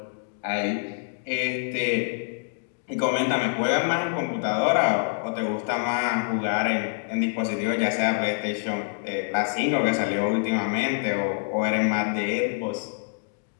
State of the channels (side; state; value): right; silent; 61 dB below the other